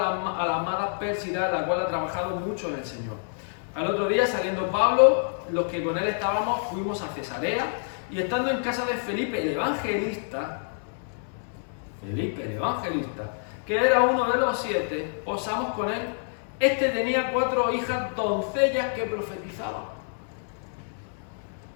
amada Pérsida, la cual ha trabajado mucho en el Señor. Al otro día, saliendo Pablo, los que con él estábamos, fuimos a Cesarea, y estando en casa de Felipe el evangelista, que era uno de los 7, posamos con él. Este tenía 4 hijas doncellas que profetizaban.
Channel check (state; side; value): silent; right; digital silence